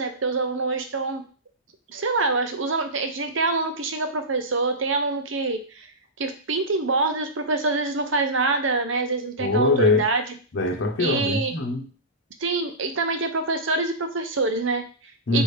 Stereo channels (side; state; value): both; normal; correlation -0.15